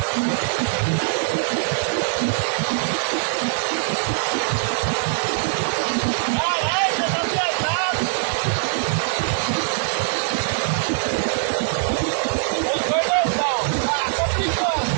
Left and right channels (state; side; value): silent; left; digital silence